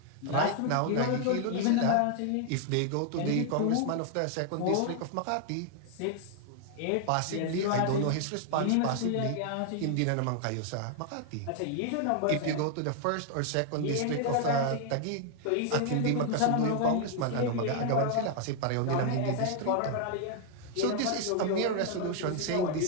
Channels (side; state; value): both; different; correlation 0.00